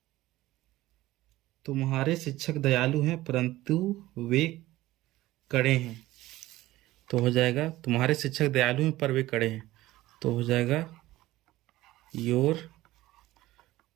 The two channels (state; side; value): quieter; left; 16.9 dB